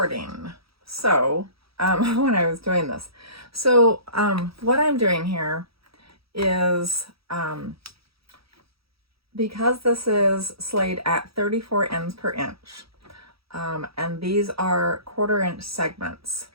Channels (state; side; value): late; left; 0.76 ms